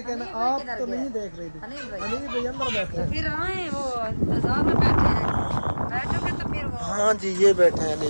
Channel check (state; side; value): inverted; both; correlation -1.00